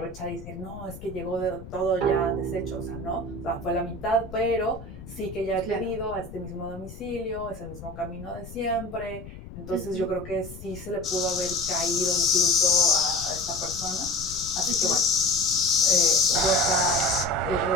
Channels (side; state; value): left; noise; rumble, 14 dB below the sound